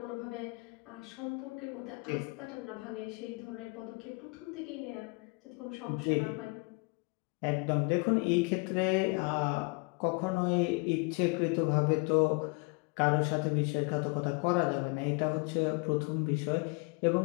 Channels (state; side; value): quieter; right; 31.1 dB